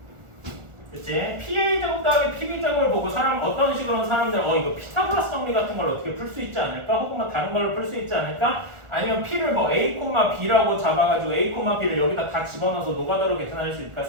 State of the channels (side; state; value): left; late; 1.4 ms